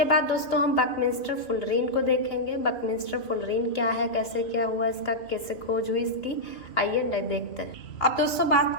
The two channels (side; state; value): right; late; 2.6 ms